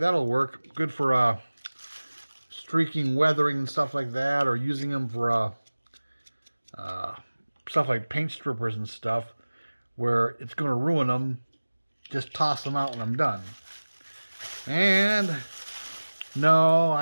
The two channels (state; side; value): inverted; both; correlation -1.00